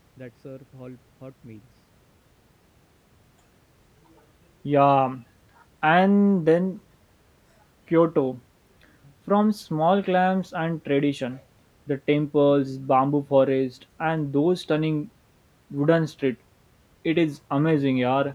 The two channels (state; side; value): identical; both; correlation 1.00